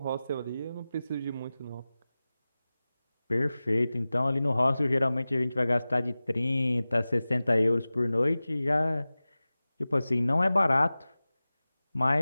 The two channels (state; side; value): inverted; both; correlation -0.97